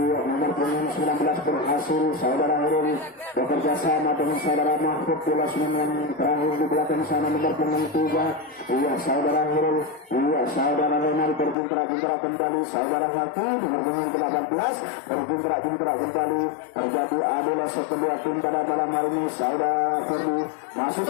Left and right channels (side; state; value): right; drops out; at 11.6 s